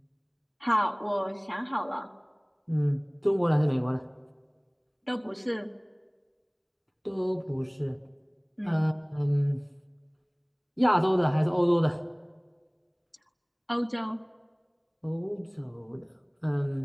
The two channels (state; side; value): identical; both; correlation 1.00